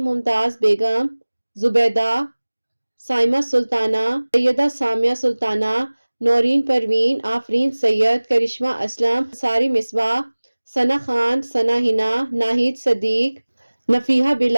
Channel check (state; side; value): inverted; both; correlation -1.00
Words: ممتاز بیگم، زبیدہ، سائمہ سلطانہ، سیدہ سامیہ سلطانہ، نورین پروین، آفرین سید، کرشمہ اسلم، ساری مصباح، ثنا خان، ثنا ہنا، ناہید صدیق، نفیحہ